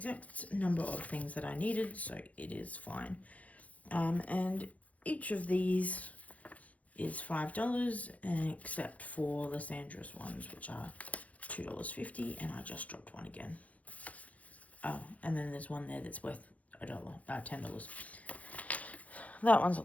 number of things that I needed, so it is fine. And each of these is $5, except for Lysandra's ones, which are $2.50, and I just dropped one again. Oh, and then there's one there that's worth $10. That one's a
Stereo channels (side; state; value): right; late; 0.069 ms